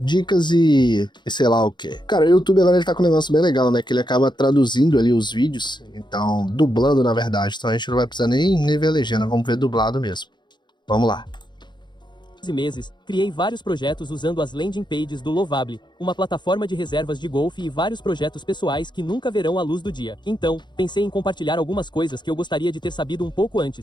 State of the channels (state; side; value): late; right; 0.22 ms